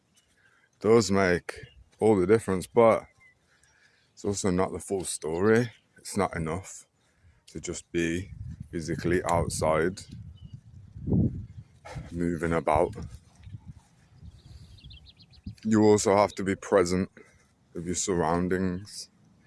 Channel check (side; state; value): both; identical; correlation 1.00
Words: does make all the difference, but it's also not the full story. It's not enough to just be physically outside, moving about. You also have to be present with your surroundings